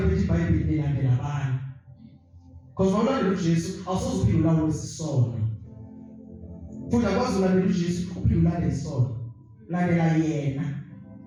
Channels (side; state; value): both; identical; correlation 1.00